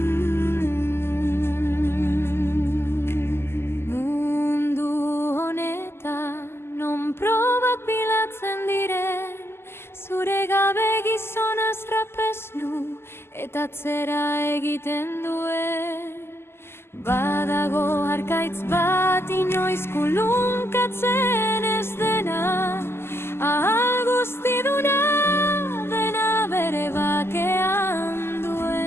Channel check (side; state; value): right; late; 0.12 ms